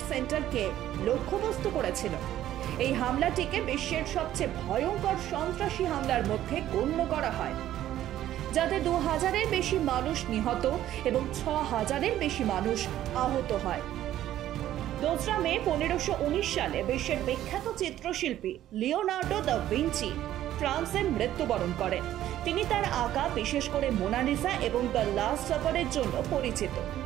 সেন্টারকে লক্ষ্যবস্তু করেছিল। এই হামলাটিকে বিশ্বের সবচেয়ে ভয়ঙ্কর সন্ত্রাসী হামলার মধ্যে গণ্য করা হয়, যাতে 2000-এর বেশি মানুষ নিহত এবং 6000-এর বেশি মানুষ আহত হয়। 2 মে 1519 সালে বিশ্বের বিখ্যাত চিত্রশিল্পী লিওনার্দো দা ভিঞ্চি ফ্রান্সে মৃত্যুবরণ করেন। তিনি তার আঁকা বিশেষ করে মোনালিসা এবং দ্য লাস্ট সাপারের জন্য পরিচিত।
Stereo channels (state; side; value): quieter; left; 12.7 dB